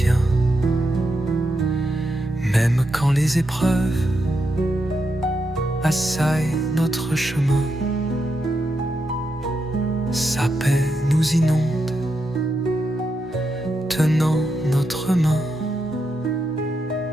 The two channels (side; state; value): both; normal; correlation 0.84